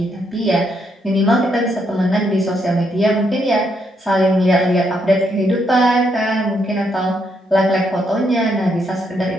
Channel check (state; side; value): normal; both; correlation 0.76